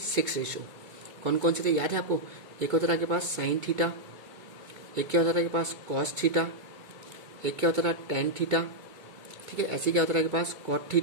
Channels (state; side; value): late; left; 2.2 ms